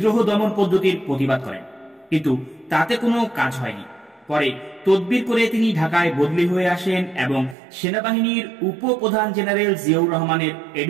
দমন পদ্ধতির প্রতিবাদ করেন, কিন্তু তাতে কোনো কাজ হয়নি। পরে তদবির করে তিনি ঢাকায় বদলি হয়ে আসেন এবং সেনাবাহিনীর উপপ্রধান জেনারেল জিয়াউর রহমানের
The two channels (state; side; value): drops out; left; at 7.6 s